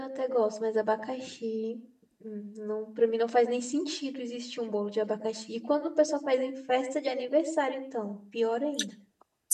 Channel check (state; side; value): identical; both; correlation 1.00